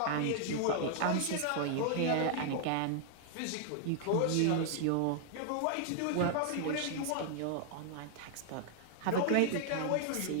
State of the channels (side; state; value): both; different; correlation 0.00